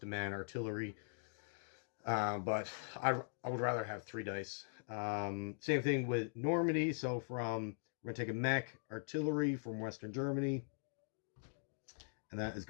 a man artillery, but I would rather have 3 dice. Same thing with Normandy. So we're gonna take a mech artillery from Western Germany, and that is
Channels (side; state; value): right; silent; digital silence